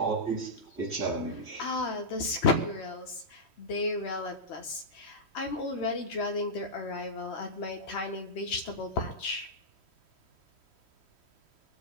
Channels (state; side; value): late; right; 3.1 ms